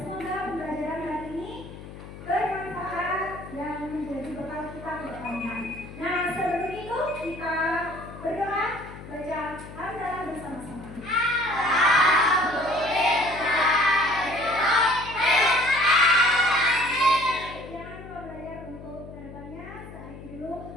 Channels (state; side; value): noise; left; hum, 14 dB below the sound